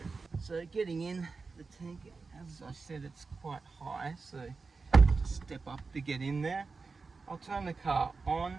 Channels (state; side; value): quieter; left; 4.3 dB